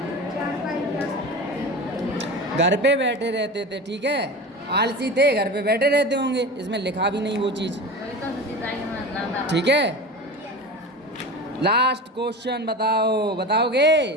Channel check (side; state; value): both; normal; correlation 0.30